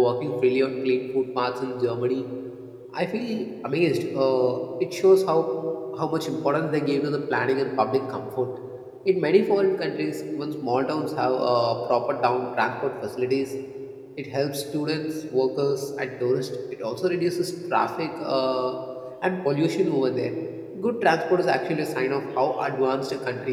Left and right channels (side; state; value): both; identical; correlation 1.00